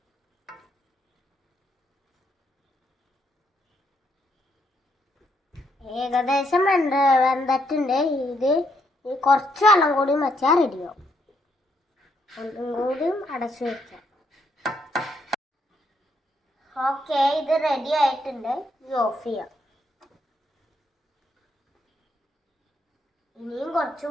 ഏകദേശം വെന്തിട്ടുണ്ട്. ഇത് കുറച്ച് വെള്ളം കൂടി വെച്ചാൽ റെഡിയാവും. ഒന്നും കൂടി അടച്ചു വെക്കാം. ഓക്കെ, ഇത് റെഡി ആയിട്ടുണ്ട്. ഇത് ഓഫ് ചെയ്യാം. ഇനിയും കുറച്ച്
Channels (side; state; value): both; normal; correlation 0.74